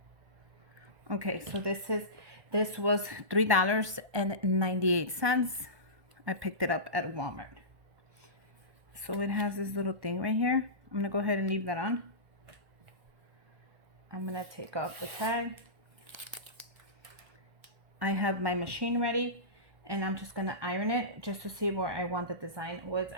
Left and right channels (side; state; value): left; late; 1.2 ms